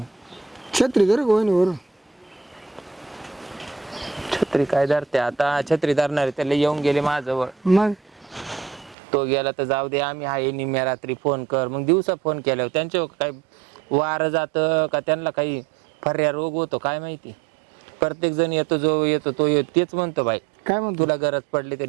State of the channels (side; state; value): left; drops out; at 9.0 s